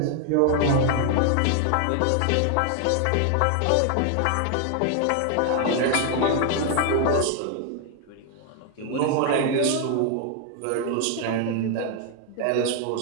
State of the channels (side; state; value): both; different; correlation 0.00